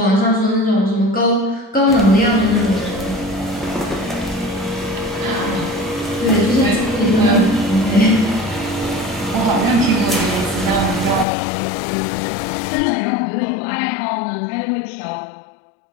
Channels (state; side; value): drops out; right; at 11.2 s